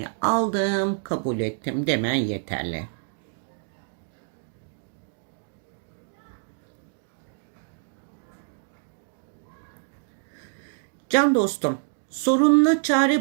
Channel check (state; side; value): silent; left; digital silence